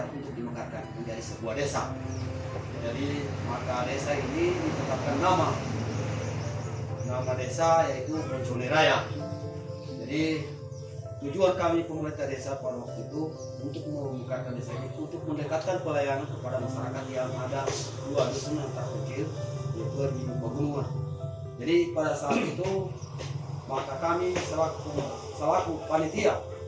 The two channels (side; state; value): both; identical; correlation 1.00